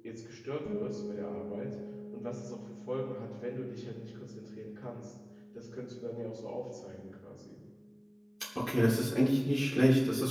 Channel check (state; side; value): identical; both; correlation 1.00